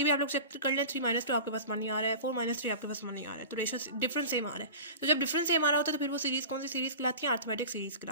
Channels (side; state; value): both; inverted; correlation -0.34